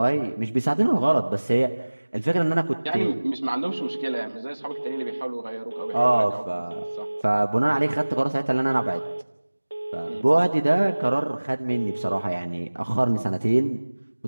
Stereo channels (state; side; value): inverted; both; correlation -1.00